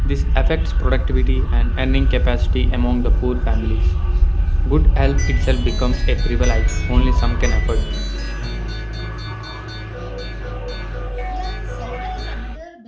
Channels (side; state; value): both; identical; correlation 1.00